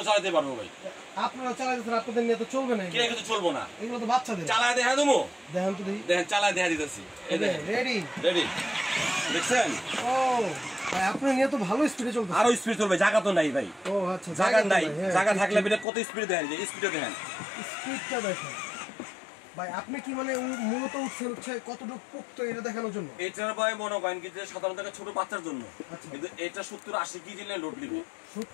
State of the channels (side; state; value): right; drops out; at 15.9 s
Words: চালাতে পারবো ভাই। আপনারা চালাতেছেন, আপনাদের নিয়ে তো চলবে না। কে কিন্তু চলবো না, এগুলো তো বাচ্চাদের। চালায় দেখা দেবো, দেখেন তো দেখি। দেখেন চালায় দেখা দিতেছি। রেডি রেডি, দেখছেন? ও ভাই আপনার নিয়ে তো ভালো স্পিডে চলছে। আরো স্পিড চলবে, জায়গা তো নাই ভাই। ও আচ্ছা, জায়গা নাই, জায়গা থাকলে বিটা কত স্পিড দেখেন, যে স্পিডে দেখেন, স্পিডটা দেখেন ভাই। আপনি কি মানে মূলত উঠছে কতটুকু পোক্ত এটা দেখানোর জন্য? এটার ভাই মনে করেন কি যে সাধারণত ছোট বাচ্চার জন্য, কিন্তু এটা 70-80 কেজি নিয়ে লোড নিবে।